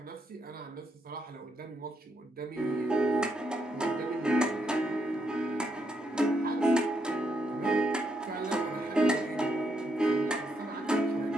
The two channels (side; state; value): both; normal; correlation 0.78